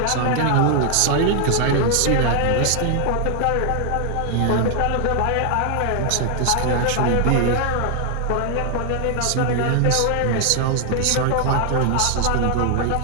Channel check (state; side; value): different; both; correlation 0.00